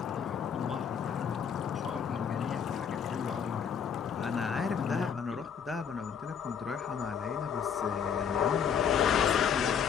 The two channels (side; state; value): right; quieter; 7.4 dB